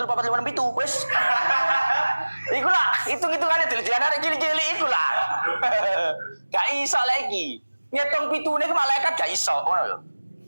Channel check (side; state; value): both; inverted; correlation -1.00